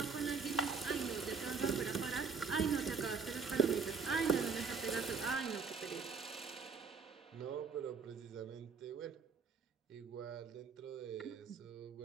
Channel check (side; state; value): left; quieter; 5.2 dB